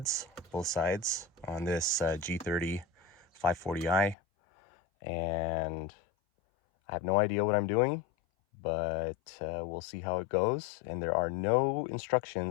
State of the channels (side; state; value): right; drops out; at 4.2 s